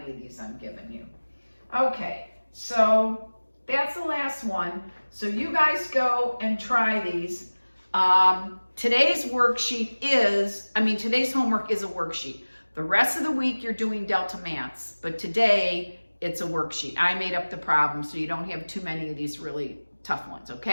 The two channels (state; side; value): inverted; both; correlation -1.00